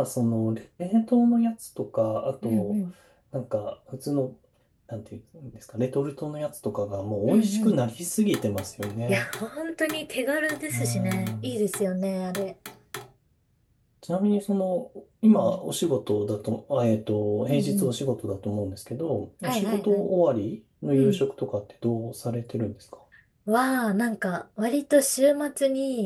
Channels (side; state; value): both; identical; correlation 1.00